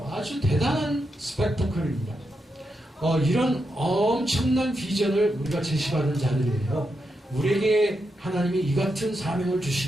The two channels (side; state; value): both; normal; correlation 0.85